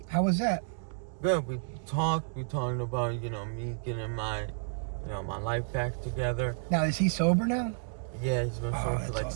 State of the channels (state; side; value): silent; left; digital silence